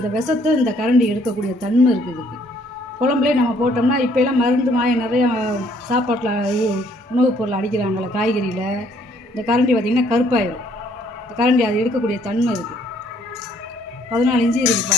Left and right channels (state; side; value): normal; both; correlation 0.64